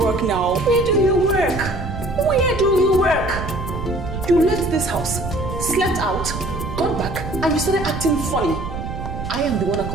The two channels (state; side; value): noise; right; rumble, 7 dB below the sound